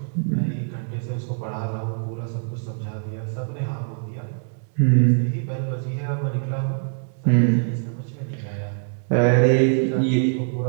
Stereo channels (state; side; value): silent; left; digital silence